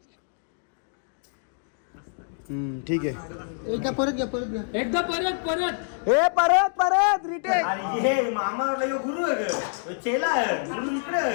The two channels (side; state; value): right; silent; 61 dB below the other